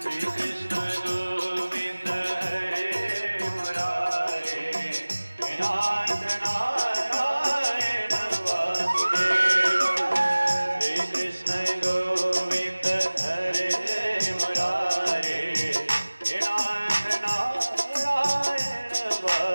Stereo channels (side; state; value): both; inverted; correlation -1.00